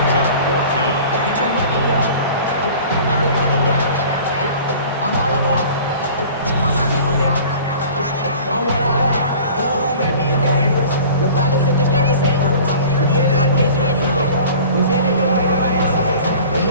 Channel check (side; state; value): both; inverted; correlation -0.44